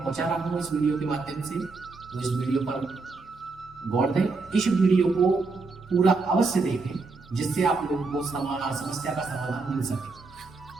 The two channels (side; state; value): left; quieter; 3.9 dB